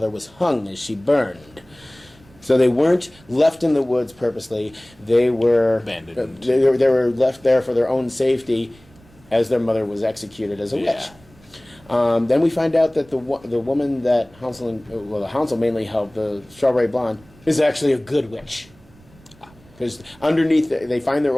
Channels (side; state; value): right; noise; rumble, 27 dB below the sound